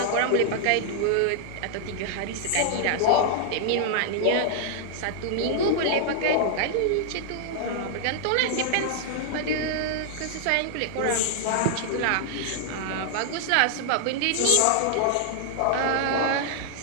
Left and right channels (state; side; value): different; both; correlation -0.01